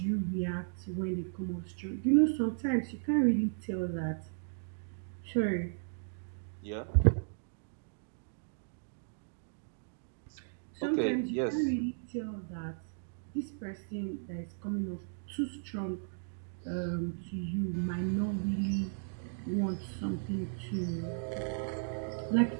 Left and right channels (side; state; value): left; silent; digital silence